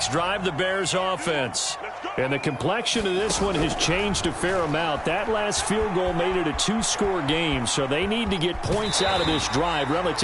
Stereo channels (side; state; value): both; identical; correlation 1.00